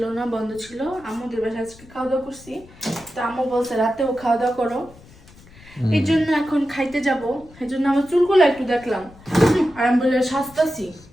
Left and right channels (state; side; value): noise; left; rumble, 23 dB below the sound